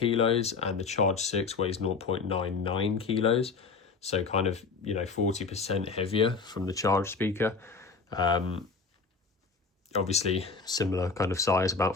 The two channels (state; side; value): quieter; right; 4.7 dB